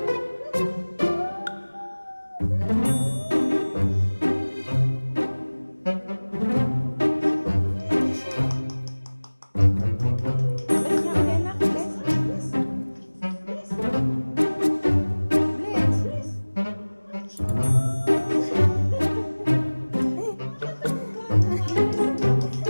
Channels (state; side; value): inverted; both; correlation -1.00